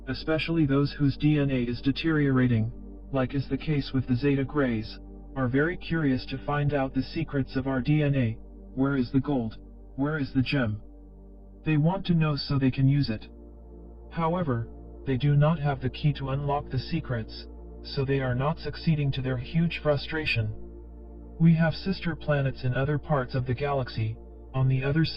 especially those whose DNA is deteriorating, like is the case with the Zeta Grays, are very curious to find out the secrets of our DNA. Where is the gold? Where is the gem? They want to know so they can use it. However, they do not have the key to unlock the secrets, so they are not succeeding to their huge frustration. We have sister planets in other parts of the galaxy, on the other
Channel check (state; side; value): identical; both; correlation 1.00